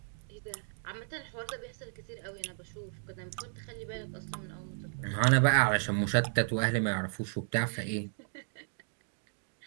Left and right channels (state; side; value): silent; left; digital silence